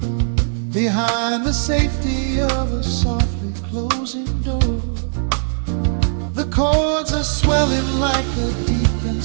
behind the safety of a softly closing door. The chords are swelling like a deep and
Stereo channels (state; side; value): silent; left; 61 dB below the other